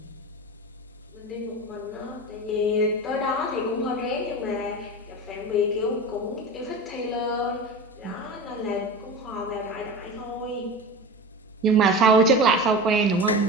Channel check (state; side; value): normal; both; correlation 0.29